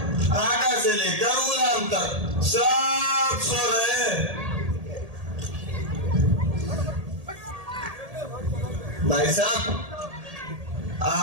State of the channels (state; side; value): late; left; 1.8 ms